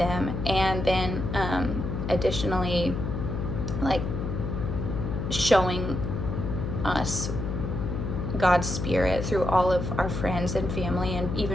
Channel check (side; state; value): left; noise; hum, 3 dB below the sound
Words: and then additionally, like, showing us God's spirit through all of our friends and family, and